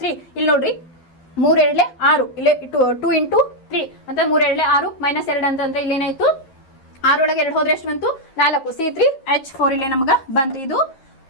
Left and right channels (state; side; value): late; right; 11 ms